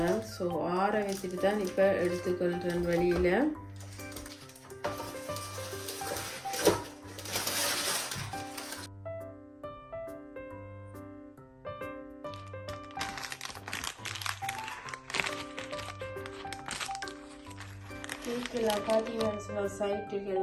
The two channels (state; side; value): identical; both; correlation 1.00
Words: ஸோ ஆற வச்சுட்டு தான் இப்போ எடுத்துக்கொள்கிறேன் வெளியில். கேக்கெல்லாம் பார்த்தீங்கன்னு சொன்னால்